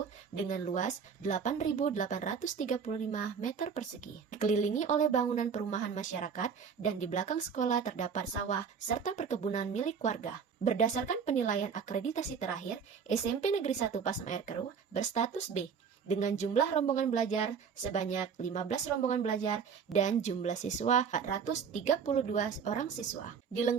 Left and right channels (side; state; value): left; quieter; 6.4 dB